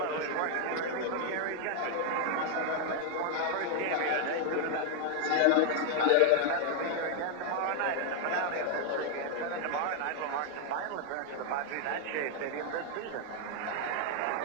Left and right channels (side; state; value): both; different; correlation 0.00